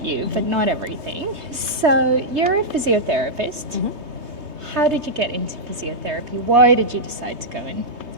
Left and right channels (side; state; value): left; late; 3.2 ms